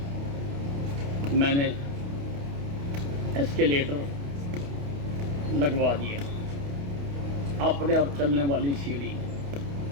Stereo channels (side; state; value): left; late; 28 ms